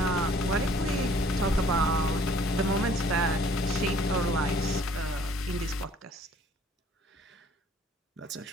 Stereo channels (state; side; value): normal; both; correlation 0.57